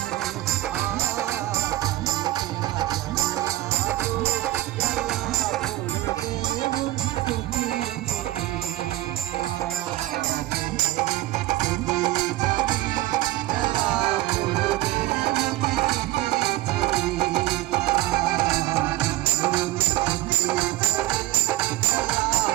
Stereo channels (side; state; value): left; quieter; 16.9 dB